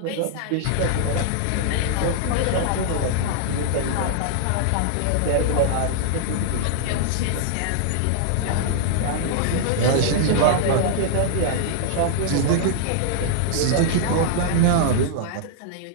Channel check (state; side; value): different; both; correlation -0.01